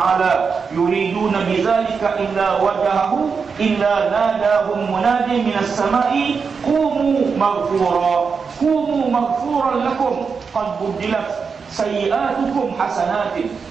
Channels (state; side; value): quieter; left; 5.5 dB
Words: yuriduna bidzalika illa wajahahu illa nadahum munadi minas sama'i qumu maghfuran lakum qad budilat sayyi'atukum hasanatin."